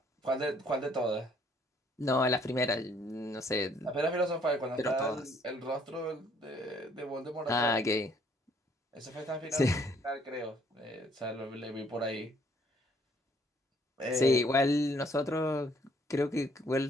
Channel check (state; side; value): normal; both; correlation 0.64